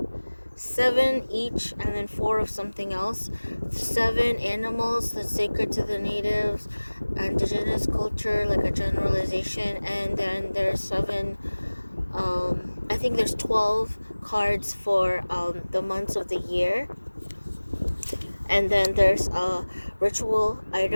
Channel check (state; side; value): inverted; both; correlation -1.00